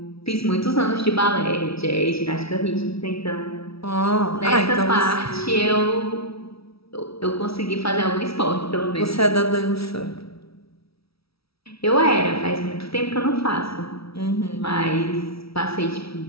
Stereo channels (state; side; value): late; right; 0.76 ms